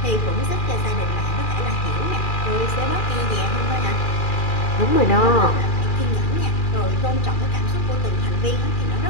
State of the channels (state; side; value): late; right; 2.4 ms